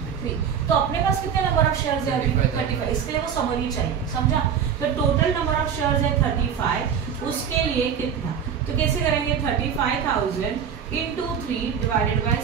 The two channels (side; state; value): left; quieter; 7.8 dB